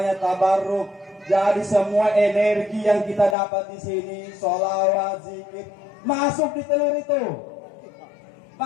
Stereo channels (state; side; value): drops out; right; at 3.4 s